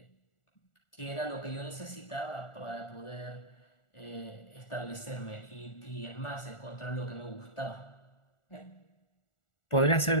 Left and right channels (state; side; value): late; right; 1.4 ms